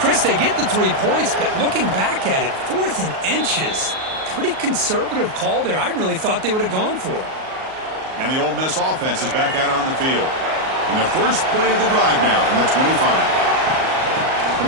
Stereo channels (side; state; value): left; late; 38 ms